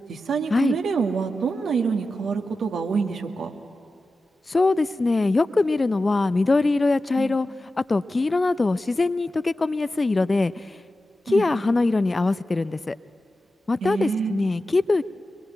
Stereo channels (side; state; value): both; normal; correlation 0.93